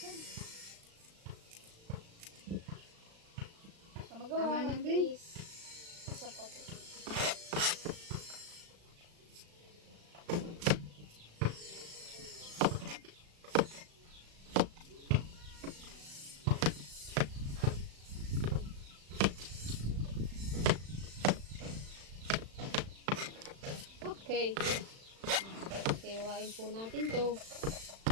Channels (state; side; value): late; left; 36 ms